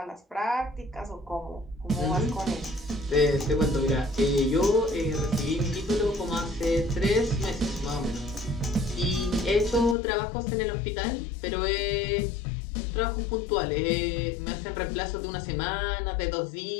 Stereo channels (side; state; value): right; drops out; at 10.0 s